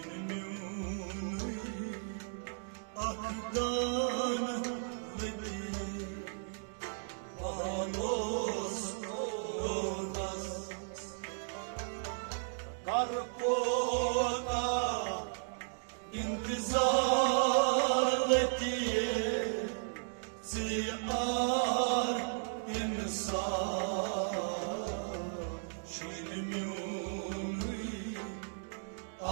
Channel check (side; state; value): left; silent; digital silence